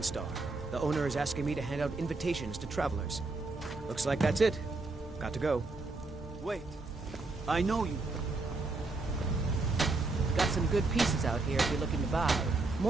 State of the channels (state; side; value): quieter; left; 3.5 dB